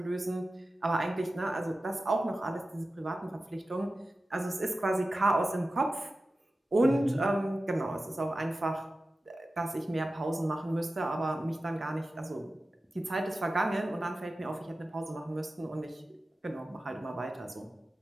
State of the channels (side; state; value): both; normal; correlation 0.94